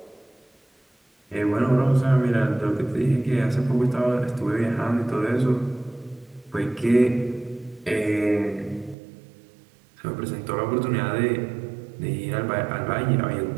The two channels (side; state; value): left; drops out; at 9.0 s